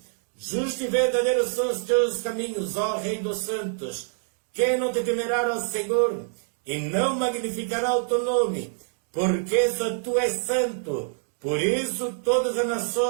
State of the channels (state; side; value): silent; left; digital silence